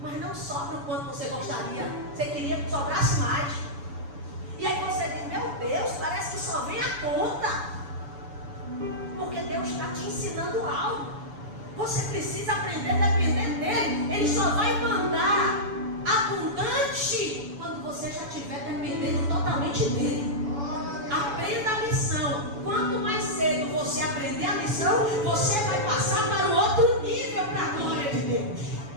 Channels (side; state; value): left; late; 7.0 ms